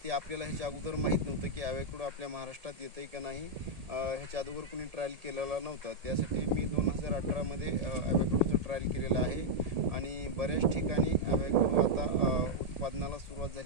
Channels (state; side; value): late; left; 1.8 ms